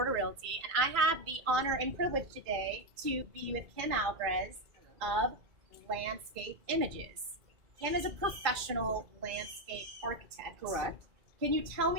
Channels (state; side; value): late; left; 2.3 ms